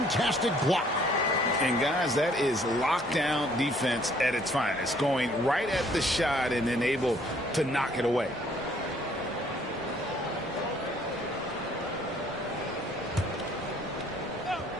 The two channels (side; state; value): both; normal; correlation 0.61